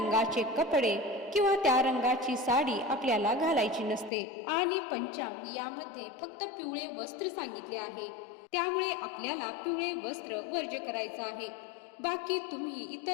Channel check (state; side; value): drops out; right; at 4.1 s